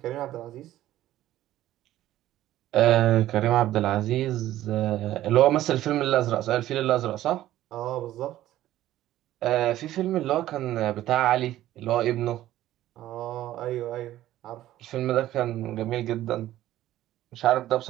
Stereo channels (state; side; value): quieter; left; 14.0 dB